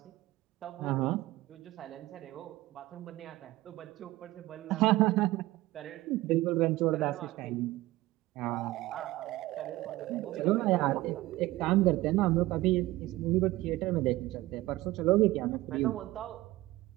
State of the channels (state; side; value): quieter; left; 17.9 dB